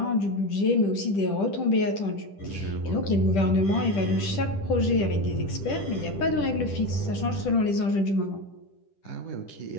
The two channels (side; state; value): right; late; 10 ms